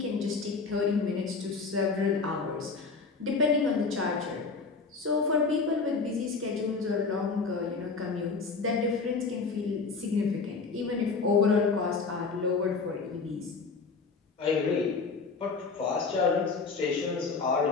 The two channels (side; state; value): right; quieter; 4.6 dB